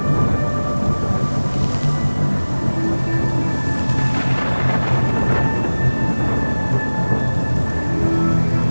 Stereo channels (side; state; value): both; inverted; correlation -1.00